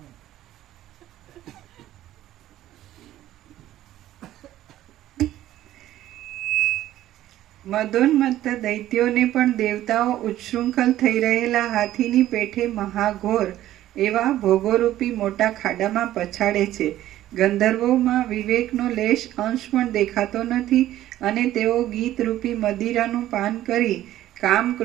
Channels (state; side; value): quieter; left; 13.6 dB